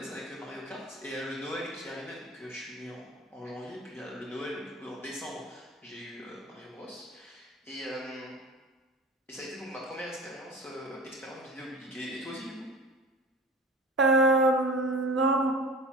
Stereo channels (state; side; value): normal; both; correlation 0.38